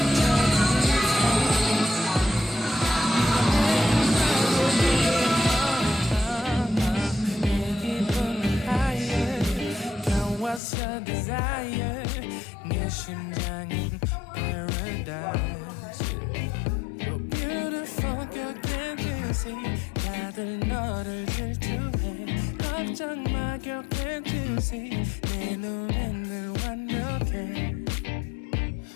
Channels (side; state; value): right; drops out; at 10.6 s